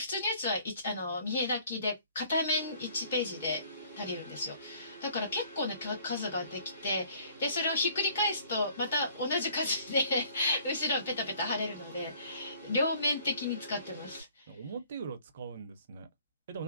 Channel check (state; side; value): inverted; both; correlation -0.57